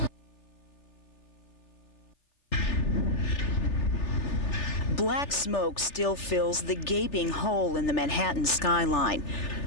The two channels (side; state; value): right; late; 3.4 ms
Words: Black smoke still fills the gaping hole in the Manhattan skyline.